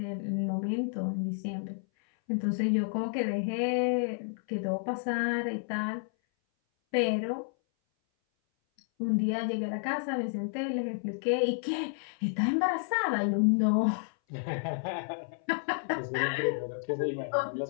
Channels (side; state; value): right; silent; 57 dB below the other